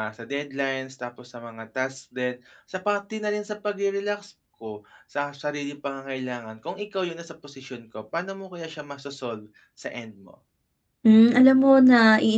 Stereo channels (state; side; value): identical; both; correlation 1.00